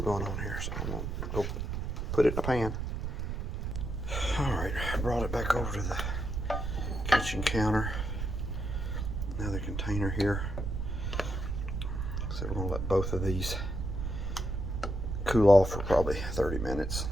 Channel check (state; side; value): noise; right; rumble, 3 dB below the sound